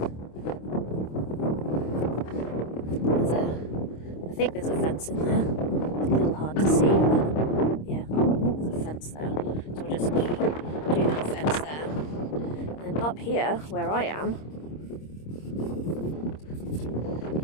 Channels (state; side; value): late; right; 26 ms